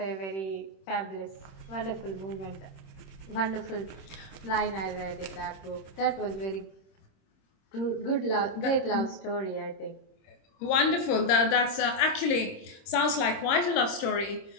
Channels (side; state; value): right; late; 26 ms